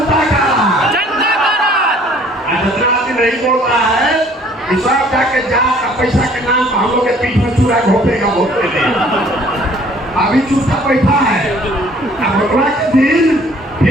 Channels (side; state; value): both; normal; correlation 0.57